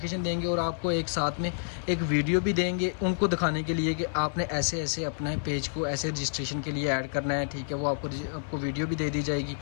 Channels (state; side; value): silent; right; 59 dB below the other